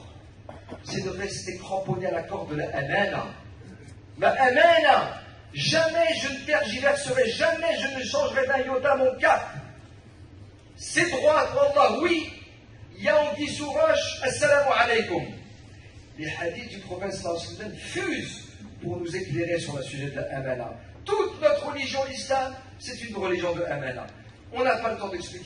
C'est de rester cramponné à la corde de la amana. La amana, jamais je ne tergiverserai, jamais je ne changerai d'un iota mon cap. C'est droit pour Allah, oui. Il y a anguille sous roche, assalamu alaikum. Les hadiths du prophète sallallahu alayhi wa sallam fusent pour nous éclairer sur le sujet de la amana. Toute notre religion, l'islam, c'est une religion de amana. On n'a pas le temps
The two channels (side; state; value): both; identical; correlation 1.00